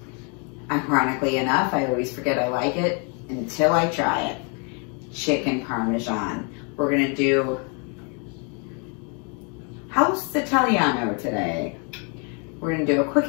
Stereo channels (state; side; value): quieter; right; 36.2 dB